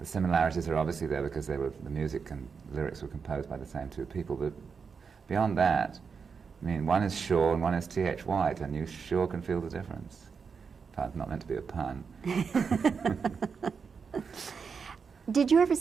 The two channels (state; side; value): quieter; left; 5.7 dB